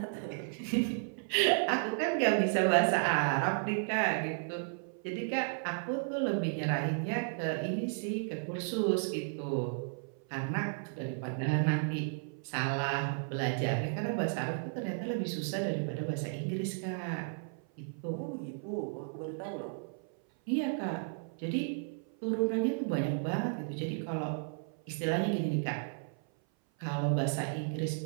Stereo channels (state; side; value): silent; left; 55 dB below the other